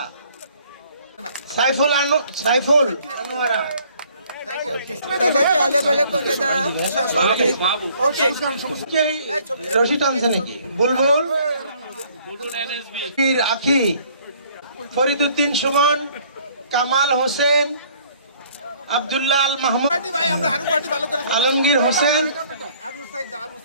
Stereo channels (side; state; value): both; inverted; correlation -0.59